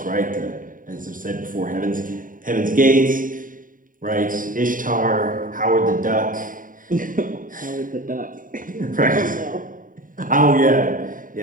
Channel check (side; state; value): left; late; 0.39 ms